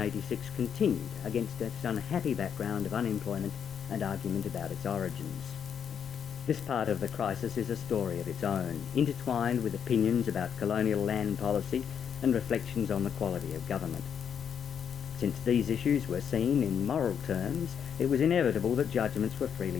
continued against its unhappy background of unemployment and argument about its origins. This part of the crisis is a story of its own, intertwined with opinions about colonial land policy and reflections on the quality of government. Since these issues were seen in moral terms, it was inevitable that judgments were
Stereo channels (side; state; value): right; quieter; 7.9 dB